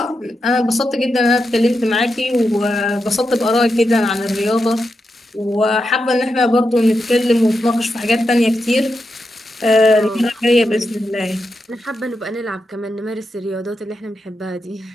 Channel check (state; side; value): normal; both; correlation 0.87